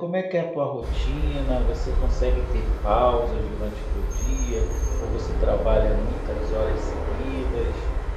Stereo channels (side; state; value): both; identical; correlation 1.00